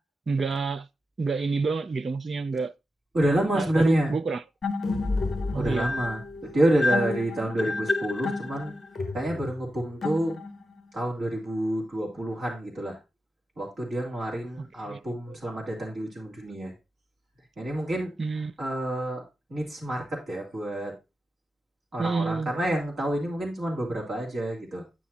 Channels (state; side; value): normal; both; correlation 0.90